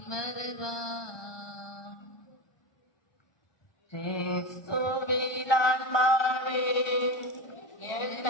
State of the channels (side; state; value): right; late; 1.2 ms